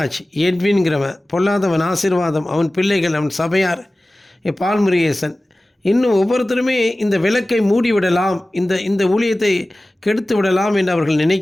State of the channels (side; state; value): both; normal; correlation 0.97